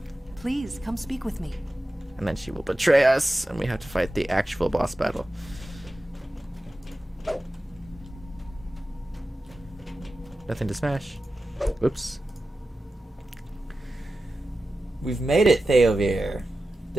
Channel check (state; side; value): normal; both; correlation 0.93